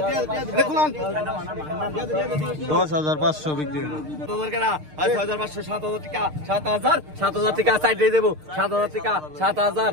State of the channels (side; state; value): left; late; 6.6 ms